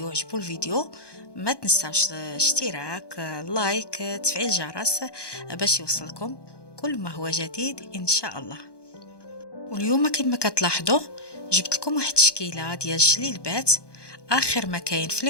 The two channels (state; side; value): late; right; 1.2 ms